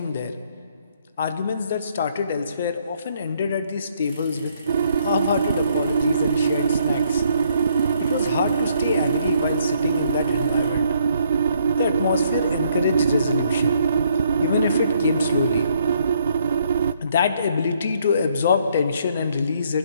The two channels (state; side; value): inverted; both; correlation -0.69